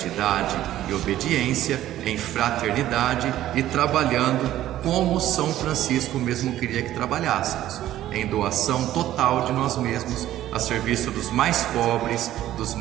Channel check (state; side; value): quieter; left; 13.3 dB